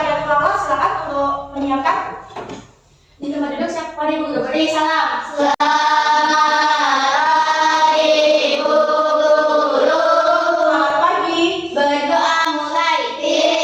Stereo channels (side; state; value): both; identical; correlation 1.00